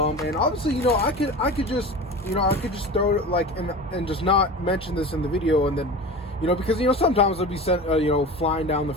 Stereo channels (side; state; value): both; normal; correlation 0.32